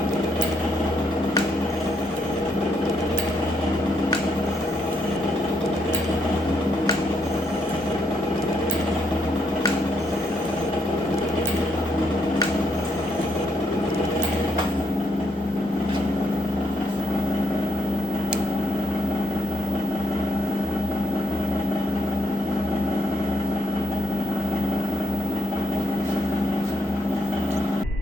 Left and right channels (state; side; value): normal; both; correlation 0.75